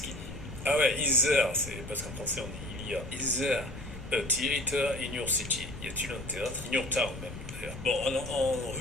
qu'il dit? Ah ouais, is there, c'est parce qu'en français on dit il y a. Is there a theater in your city? Y a-t-il un théâtre? In your town même. Bon, en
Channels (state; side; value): noise; left; rumble, 12 dB below the sound